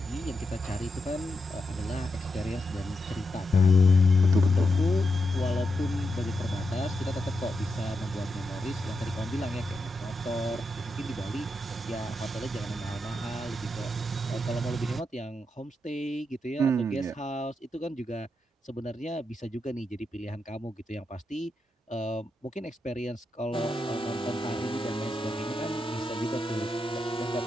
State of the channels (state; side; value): normal; both; correlation 0.85